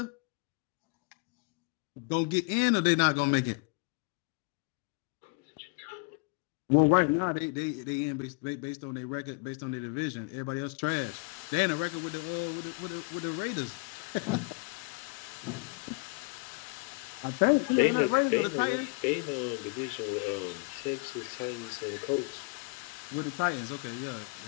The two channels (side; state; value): right; quieter; 30.9 dB